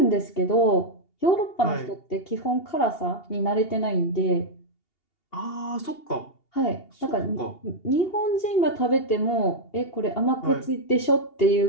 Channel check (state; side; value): late; right; 2.8 ms